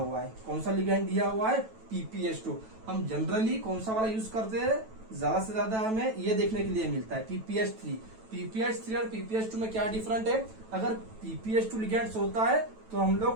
है, कौन सा लिगैंड दिया हुआ है, PPH2। हम जनरली कौन सा वाला यूज करते हैं, ज्यादा से ज्यादा हमें ये देखने के लिए मिलता है PPH3। PPH3 और PPH2 में क्या डिफरेंट है, अगर PPH2 लिगैंड होता है तो हम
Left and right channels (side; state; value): left; late; 9.1 ms